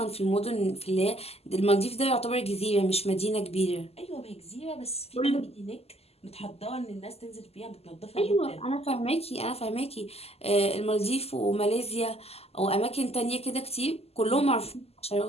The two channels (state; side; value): late; right; 0.29 ms